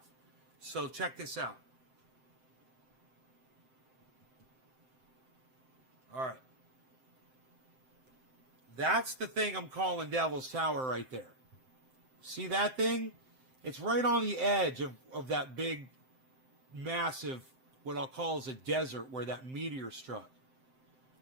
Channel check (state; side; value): late; left; 7.7 ms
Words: So check this out. All right. That's the thing I'm calling Devil's Tower right there. See that thing? It's right on the edge of that big, massive, what I'll call is a desert where that meteor struck.